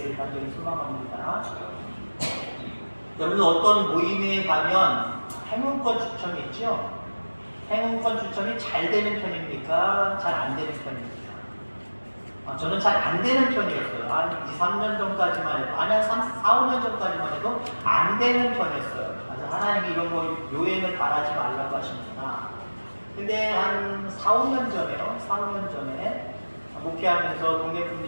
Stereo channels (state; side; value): inverted; both; correlation -1.00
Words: 간절히 소망합니다. 여러분 어떤 모임에 가면 행운권 추첨이 있죠? 행운권 추첨이 잘 되는 편입니까? 잘 안 되는 편입니까? 저는 잘 안 되는 편이었어요. 한 2, 3년 전까지만 해도, 아니, 한 4, 5년 전까지만 해도 안 되는 편이었어요. 그래서 하나님이 이런 거 요행을 바라지 말라고 하시는구나. 근데 한 4, 5년 전에요. 4, 5년 전에 목회하면서 동네